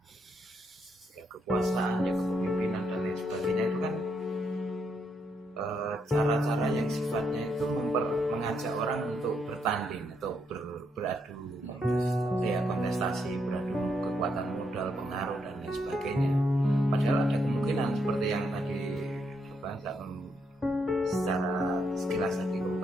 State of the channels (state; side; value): normal; both; correlation 0.77